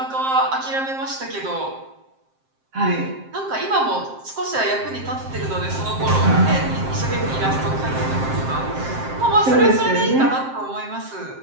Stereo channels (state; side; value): late; left; 7.6 ms